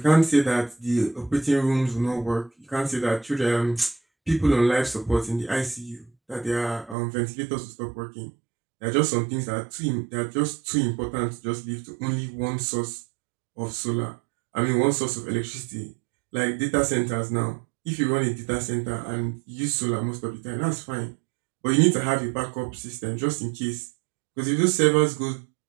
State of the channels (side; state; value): left; drops out; at 7.0 s